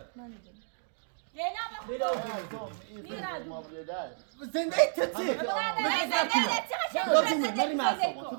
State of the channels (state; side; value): silent; left; digital silence